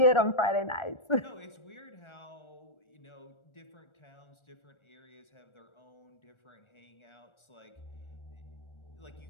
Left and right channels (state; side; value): late; right; 1.4 ms